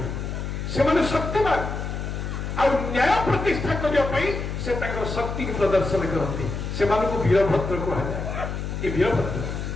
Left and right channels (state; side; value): noise; left; hum, 5 dB below the sound